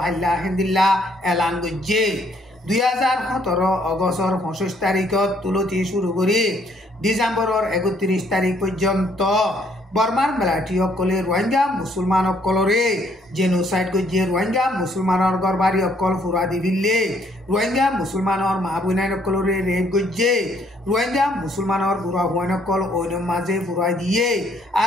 হাল্লা হেন্দিল্লা এলান গজ্জে 2017 অগস্টর 25 তারিখত তুলতি শুরু করি ডিসেম্বরর 31 তারিখ পর্যন্ত বর্মার মিলিটারি অকলে রোহিঙ্গা মুসলমান অকলরে জেনোসাইড গজ্জে রোহিঙ্গা মুসলমানর গরবারি অকল ফুরা দিবিল্লে রোহিঙ্গা মুসলমানর মা বোনাই অকলরে রেপ গজ্জে রোহিঙ্গা মুসলমানর বুড়া হুয়ান অকল ওইনর মাঝে ফুরাই দিয়ে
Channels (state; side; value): normal; both; correlation 0.67